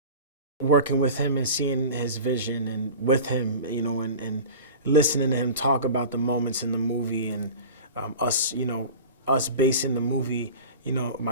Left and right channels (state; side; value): inverted; both; correlation -0.35